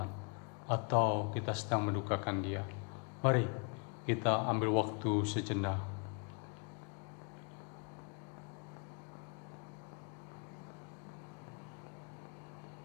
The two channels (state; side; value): quieter; right; 37.8 dB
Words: atau kita sedang mendukakan Dia? Mari kita ambil waktu sejenak.